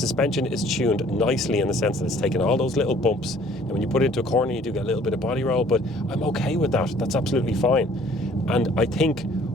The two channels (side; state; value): both; normal; correlation 0.56